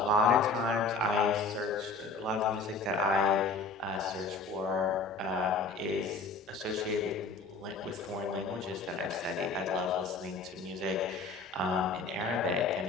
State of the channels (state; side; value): quieter; right; 3.9 dB